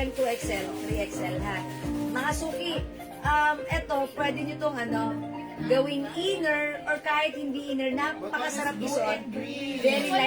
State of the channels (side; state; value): both; identical; correlation 1.00